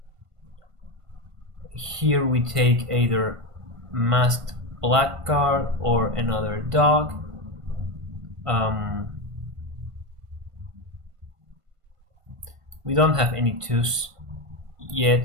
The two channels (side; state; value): left; late; 1.5 ms